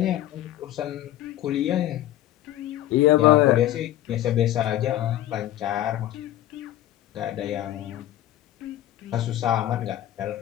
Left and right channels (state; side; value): quieter; right; 13.5 dB